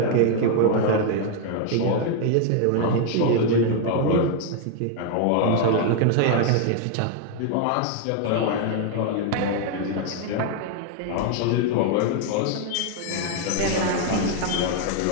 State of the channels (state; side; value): different; both; correlation 0.00